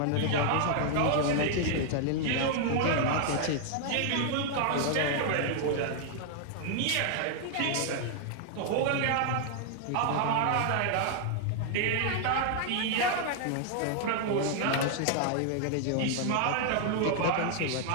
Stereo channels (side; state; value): both; different; correlation 0.00